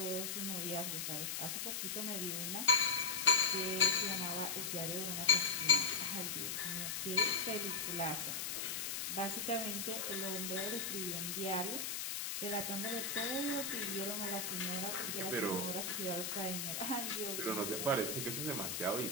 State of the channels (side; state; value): left; noise; hiss, 2 dB below the sound